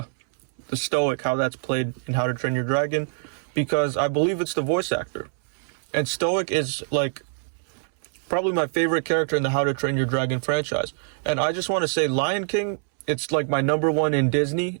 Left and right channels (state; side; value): silent; left; 62 dB below the other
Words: Stoic, how that's played in How to Train Your Dragon, because I believe it's the voice actor. And Stoic is like probably my favorite character in the How to Train Your Dragon franchise. And I just want to say Lion King, it's like my number one in Disney